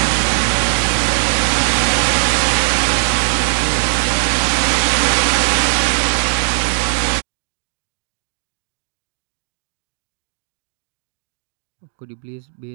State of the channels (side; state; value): left; silent; digital silence